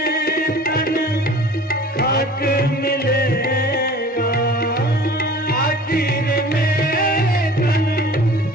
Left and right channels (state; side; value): normal; both; correlation 0.44